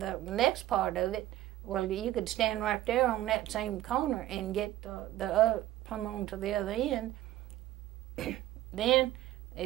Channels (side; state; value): left; quieter; 14.4 dB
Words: next part of it, well, you could stand right there on that same corner and get come on to the other end. Then